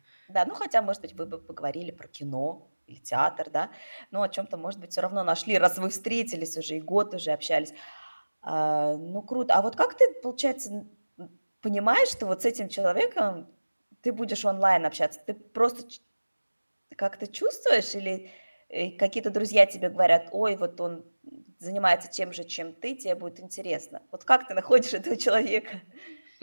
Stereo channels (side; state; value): both; inverted; correlation -1.00